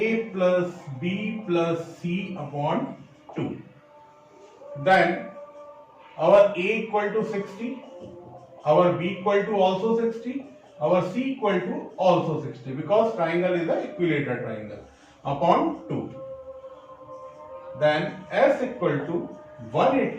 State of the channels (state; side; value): identical; both; correlation 1.00